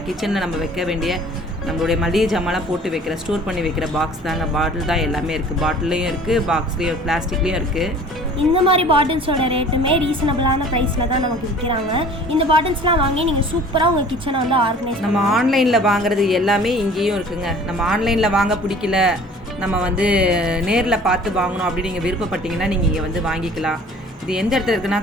கிச்சனில் நம்ம வைக்க வேண்டிய நம்மளுடைய மளிகை ஜாமான்லாம் போட்டு வைக்கிற, ஸ்டோர் பண்ணி வைக்கிற பாக்ஸ் தாங்க. பாட்டில் தான் எல்லாமே இருக்குது. பாட்டிலையும் இருக்குது, பாக்ஸ்லேயும், பிளாஸ்டிக்லேயும் இருக்குது. இந்த மாதிரி பாட்டில்ஸோட ரேட்டுமே ரீசனபிளான ப்ரைஸில் தான் நமக்கு விற்கிறாங்க. இந்த பாட்டில்ஸ்லாம் வாங்கி நீங்கள் சூப்பராக உங்கள் கிச்சனை வந்து ஆர்கனைஸ். நம்ம ஆன்லைனில் வாங்குறது எல்லாமே இங்கேயும் இருக்குங்க. நம்ம ஆன்லைனில் வாங்க பிடிக்கல, நம்ம வந்து நேரில் பார்த்து வாங்கணும் அப்படின்னு நீங்கள் விருப்பப்பட்டீங்கன்னா நீங்கள் இங்கே வந்து வாங்கிக்கலாம். இது எந்த இடத்துல இருக்குன்னா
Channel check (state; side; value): normal; both; correlation 0.48